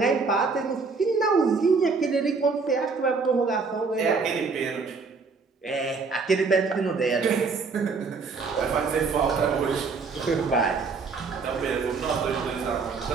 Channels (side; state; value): left; quieter; 4.6 dB